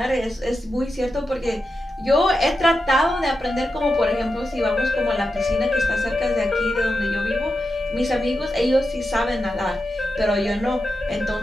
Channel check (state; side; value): normal; both; correlation 0.89